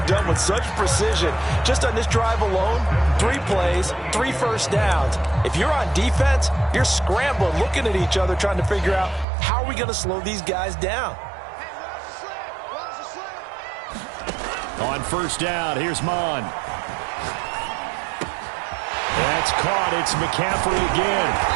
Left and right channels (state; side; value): drops out; left; at 9.2 s